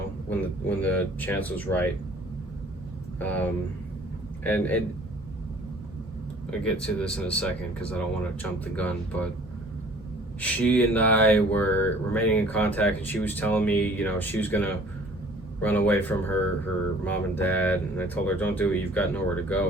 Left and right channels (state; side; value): normal; both; correlation 0.52